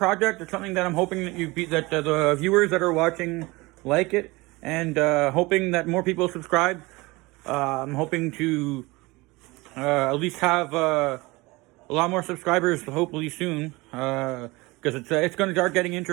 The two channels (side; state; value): left; quieter; 22.8 dB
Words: It's something that I'm hoping that the viewers that are watching like it, and hoping that more people subscribe. I'm hoping to at least have a lot more subscribers, hopefully soon, because it's going to start getting